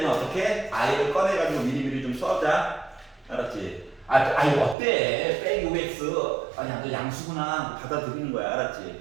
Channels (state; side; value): drops out; left; at 4.8 s